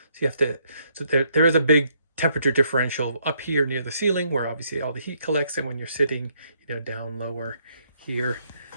so you have to, so there is a big temperature differential up here near the ceiling where obviously all the heat collects, and when you're sitting, you know, down lower here.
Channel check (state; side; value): inverted; both; correlation -0.71